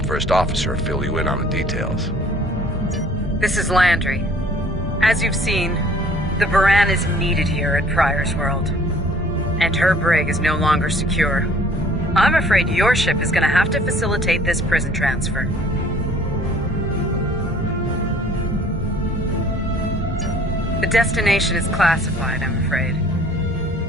first officer fill you in on the details. This is Landry. As you've seen, the Baran is needed here at Pryor's World. And her brig is no longer secure. I'm afraid your ship is going to have to facilitate this prison transfer. The destination is classified, I'm afraid.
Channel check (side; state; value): both; normal; correlation 0.54